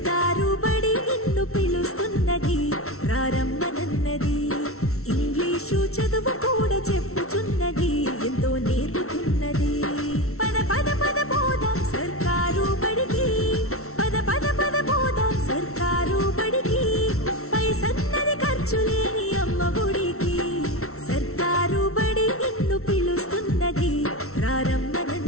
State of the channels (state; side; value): late; right; 0.63 ms